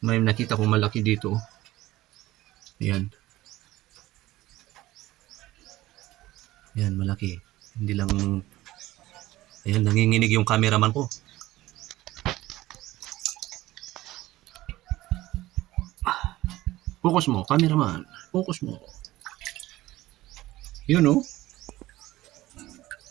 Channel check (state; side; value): quieter; left; 16.8 dB